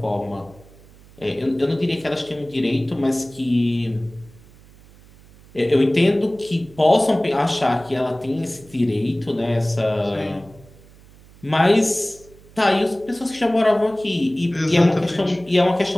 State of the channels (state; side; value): noise; right; hum, 24 dB below the sound